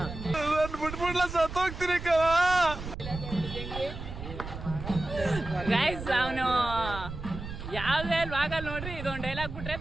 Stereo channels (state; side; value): noise; right; rumble, 9 dB below the sound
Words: ಗೈಸ್ ಅವನು ಯಾವುದೇ ಭಾಗಲ್ಲಿ ನೋಡ್ರಿ ಇದೊಂದು ಡೈಲಾಗ್ ಬಿಟ್ರೆ